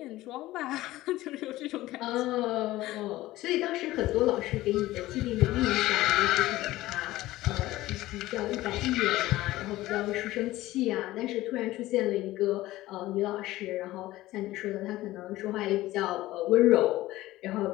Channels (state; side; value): quieter; right; 16.8 dB